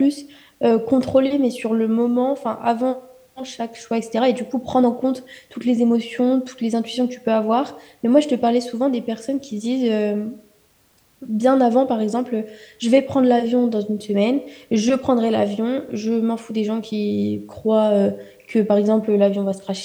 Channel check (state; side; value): identical; both; correlation 1.00